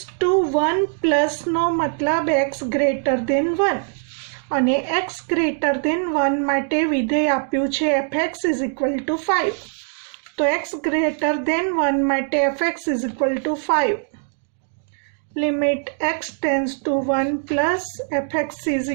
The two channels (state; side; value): silent; left; 64 dB below the other